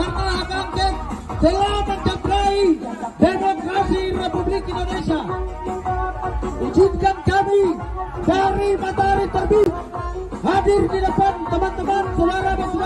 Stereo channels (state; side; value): identical; both; correlation 1.00